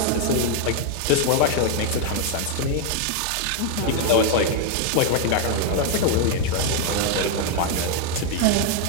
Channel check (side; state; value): both; different; correlation 0.00